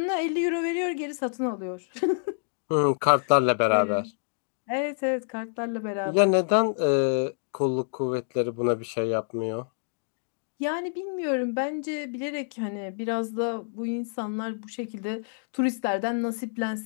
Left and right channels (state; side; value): silent; right; digital silence